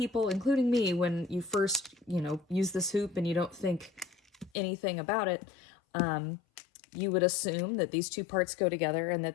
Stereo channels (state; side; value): drops out; right; at 4.5 s